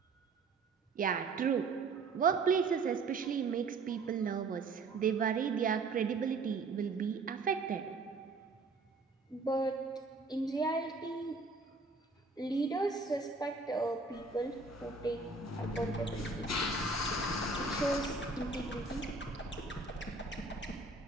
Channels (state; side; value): quieter; left; 3.9 dB